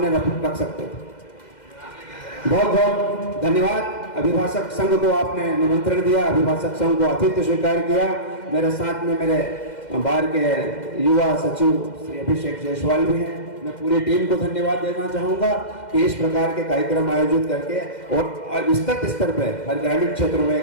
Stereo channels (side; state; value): right; late; 2.1 ms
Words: रख सकते थे। बहुत बहुत धन्यवाद। अभिभाषक संघ को आपने निमंत्रण दिया, अभिभाषक संघ को आतिथ्य स्वीकार किया। मेरे साथ में मेरे बार के युवा सचिव श्री अभिषेक जायसवाल भी हैं। मैं पूरी टीम को धन्यवाद देना चाहूंगा कि इस प्रकार के कार्यक्रम आयोजित करके और विस्तृत स्तर पर हर ग्रामीण क्षेत्रों